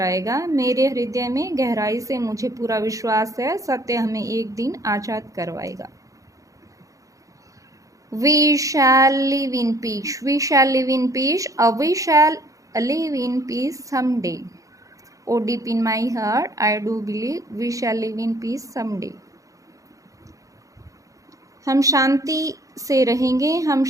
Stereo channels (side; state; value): left; late; 0.16 ms